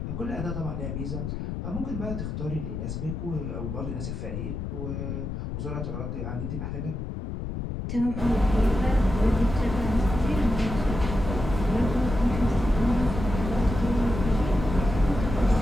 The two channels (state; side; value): noise; left; rumble, 5 dB below the sound